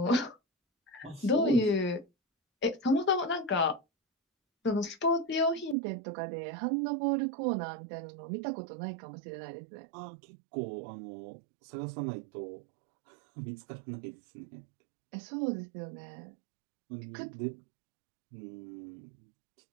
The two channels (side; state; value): left; drops out; at 5.8 s